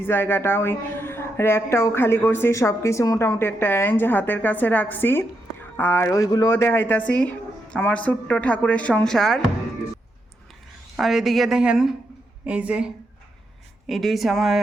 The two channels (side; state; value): both; normal; correlation 0.82